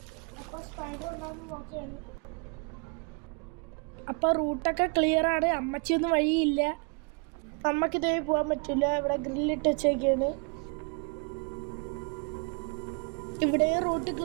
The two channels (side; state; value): left; quieter; 35.2 dB